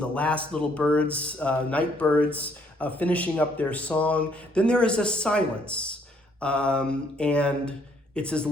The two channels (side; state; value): both; normal; correlation 0.67